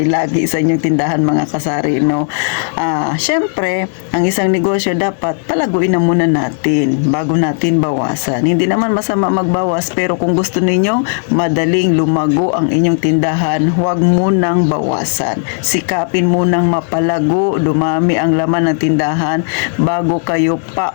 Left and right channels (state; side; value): silent; right; 62 dB below the other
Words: lagi sa inyong tindahan, mga kasari, no? Syempre, ang isang negosyo dapat palaguin na muna natin bago natin bawasan. Hindi naman masama magbawas, pero kung gusto ninyong madaling lumago ang inyong tindahan, huwag munang bawasan. Sikapin munang mapalago, dumami ang laman ng tindahan bago kayo